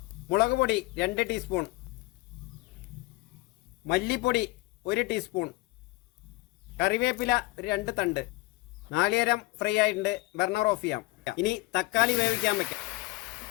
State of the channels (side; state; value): right; quieter; 21.2 dB